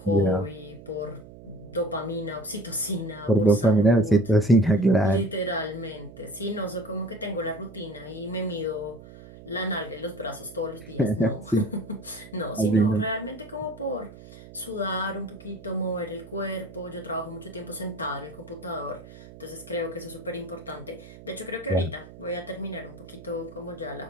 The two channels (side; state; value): right; noise; hum, 18 dB below the sound